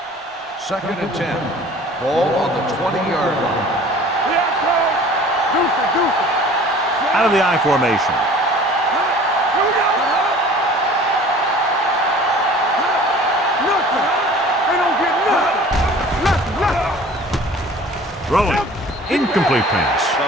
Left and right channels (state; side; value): normal; both; correlation 0.46